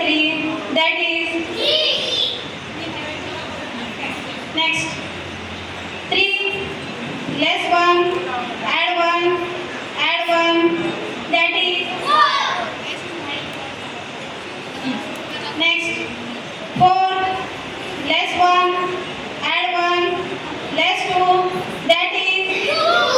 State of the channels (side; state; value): both; identical; correlation 1.00